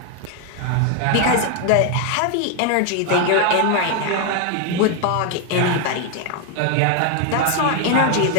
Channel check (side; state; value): both; different; correlation 0.01